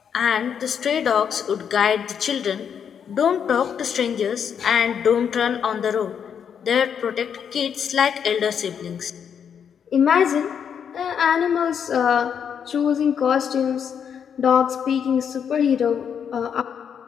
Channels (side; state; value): right; quieter; 7.7 dB